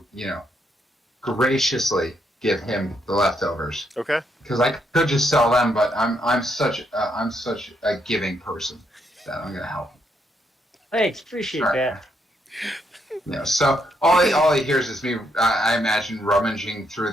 graciously give him the leftovers. Okay. Because I could just sell them, but I'm such a giving person that I'm gonna help. Thanks, appreciate Sure. that. So all he hears is me. I imagine rummaging through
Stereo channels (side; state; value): both; normal; correlation 0.76